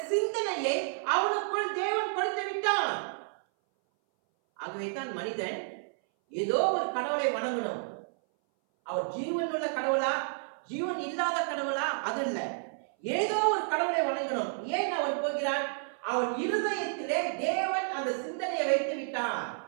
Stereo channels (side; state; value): left; silent; 57 dB below the other